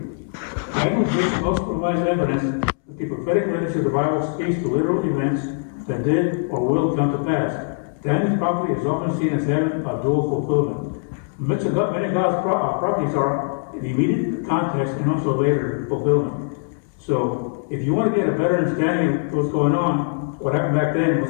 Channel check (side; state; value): right; silent; 64 dB below the other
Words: Daniel's vision also provides evidence that the prophetic literature of the Bible speaks to literal events that did or will come to pass. Daniel's prophecy is often seen as having a dual fulfillment. Many of God's prophecies are in immediate context and also later fulfillment. So, if you want to get a better understanding of what's going on, what happened back then, and